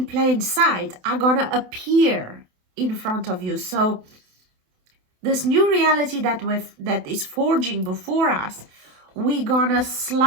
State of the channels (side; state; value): left; late; 27 ms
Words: plain sight are gonna appear in front of you. So this new reality that is forging before us, we're gonna